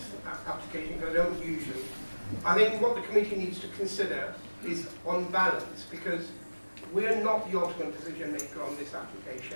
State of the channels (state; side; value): inverted; both; correlation -1.00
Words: application because I don't usually. I think what the committee needs to consider is on balance, because we're not the ultimate decision maker on this